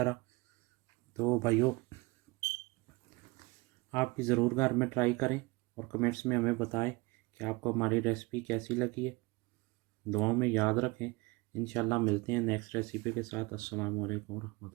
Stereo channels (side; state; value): left; quieter; 24.6 dB